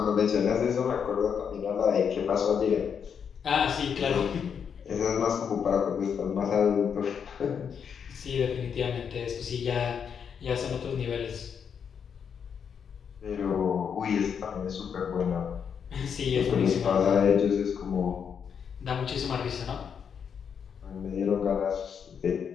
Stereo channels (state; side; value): quieter; right; 7.2 dB